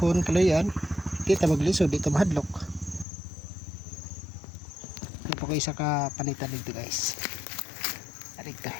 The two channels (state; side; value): drops out; right; at 3.1 s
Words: kalayan. Kita maglisod dito mahadlok. Ano po kayo isa ka panitan dito guys. Arito.